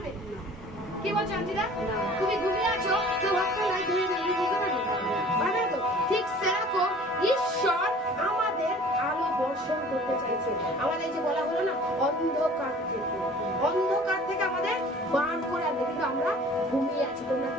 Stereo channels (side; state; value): both; normal; correlation 0.48